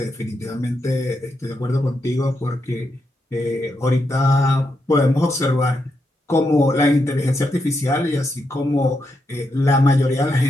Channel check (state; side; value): normal; both; correlation 0.83